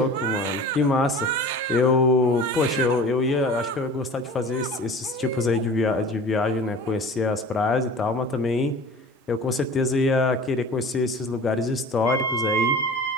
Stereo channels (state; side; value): normal; both; correlation 0.40